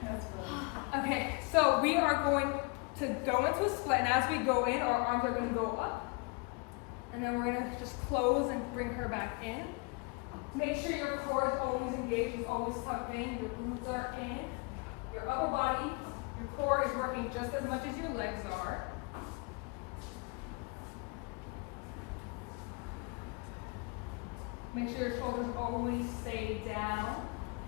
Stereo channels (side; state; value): right; quieter; 30.7 dB